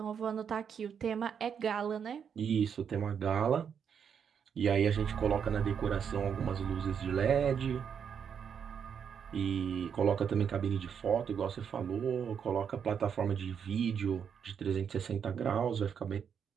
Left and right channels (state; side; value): quieter; left; 7.4 dB